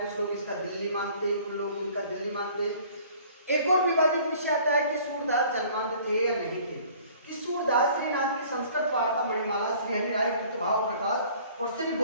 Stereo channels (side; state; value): both; inverted; correlation -0.52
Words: लोग इसका दिल्ली मानते हैं, कुछ लोग इनका दिल्ली मानते हैं। एक और विवादित विषय आता है कि सूरदास जन्मांध थे या नहीं थे। कि सूरदास श्रीनाथ की संस्कृत वार्ता मणिमाला, श्री हरिराय कृतभाव प्रकाश और श्री